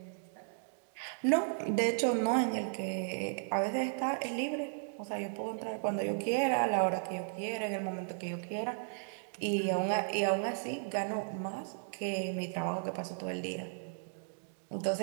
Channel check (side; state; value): left; silent; digital silence